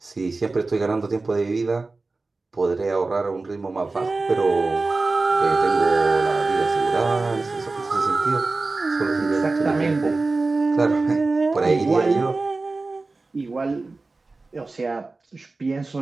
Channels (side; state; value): left; quieter; 3.5 dB